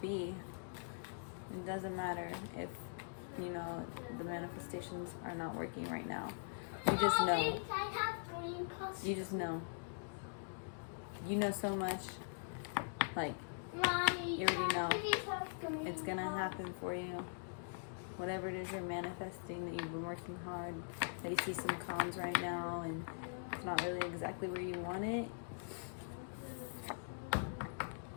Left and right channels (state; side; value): silent; right; digital silence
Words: It doesn't matter if, you know, the manifestations are not working right now. You just know. You just know. You know so much. Like, you already know it's gonna happen for you. Whatever it is you're manifesting, that you've been working hard, that you see some cons right now and it's not really exactly where you want it,